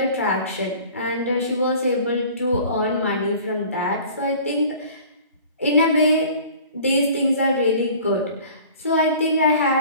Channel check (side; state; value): both; inverted; correlation -0.47